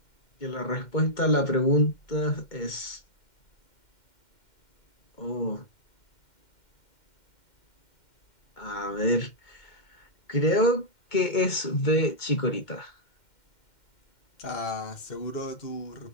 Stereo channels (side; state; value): right; late; 2.1 ms